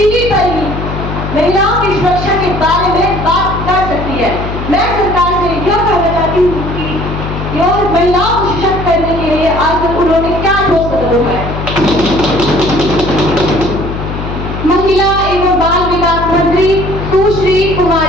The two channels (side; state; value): left; noise; hum, 6 dB below the sound